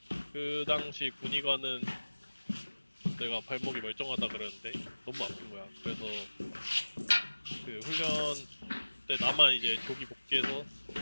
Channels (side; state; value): both; inverted; correlation -1.00